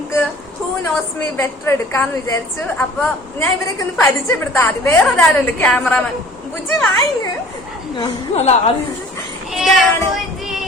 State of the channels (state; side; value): normal; both; correlation 0.48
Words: ഹൂ നോസ് മീ ബെറ്റർ എടുക്കാന്ന് വിചാരിച്ചു. അപ്പൊ ഞാൻ ഇവരൊക്കെ ഒന്ന് പരിചയപ്പെടുത്താം. ആദ്യം വേറൊരാളുണ്ട്, ക്യാമറാമാൻ ബുജി വായിങ്.